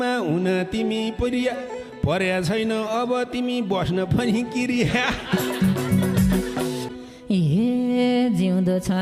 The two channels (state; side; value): identical; both; correlation 1.00